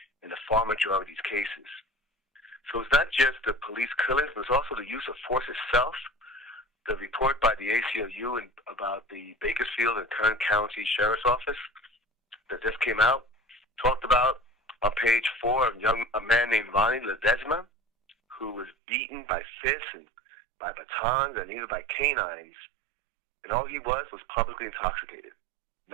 in the far majority of these cases. So it's not just the police killings, but it's also the use of force itself. The report by the ACLU about the Bakersfield and Kern County Sheriff's Office that just came out talked about on page 4 a man named Ronnie Ledesma, who was beaten by fists and by batons and even by canines. And all he was publicly intoxicated,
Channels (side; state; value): left; drops out; at 18.8 s